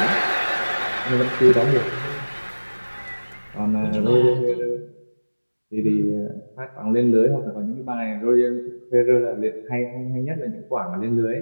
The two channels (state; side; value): inverted; both; correlation -1.00